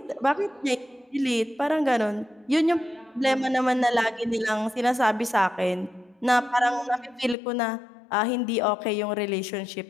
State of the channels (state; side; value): drops out; right; at 7.4 s